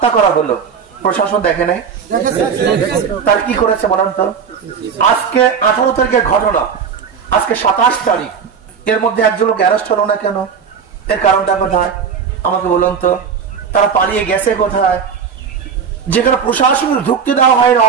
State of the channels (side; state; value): left; quieter; 6.6 dB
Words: করা হলো, প্রশাসন দেখে নাই? তার কি করেছে বলেন তো? আজকে 18 তারিখের ঘটনা, আজকে 27 তারিখ, এর মধ্যে একজন লোক অ্যারেস্ট হলো না কেন? এর কারণটা কোথায় আমাকে বলুন তো? তারা পালিয়ে গেছে কোথায়? যেখানে প্রশাসনের ঢুকতে দেওয়া হয় না,